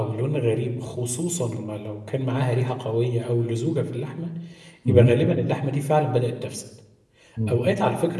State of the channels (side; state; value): both; identical; correlation 1.00